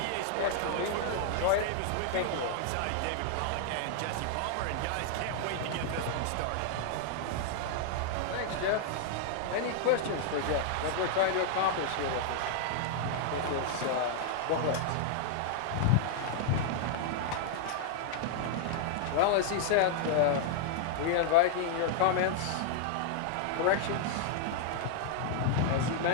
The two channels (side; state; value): both; different; correlation -0.01